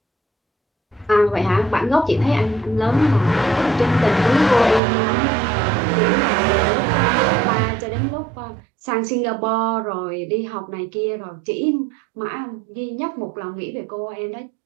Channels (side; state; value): left; drops out; at 4.8 s